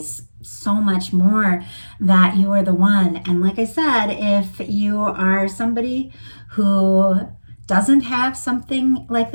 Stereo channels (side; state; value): both; inverted; correlation -1.00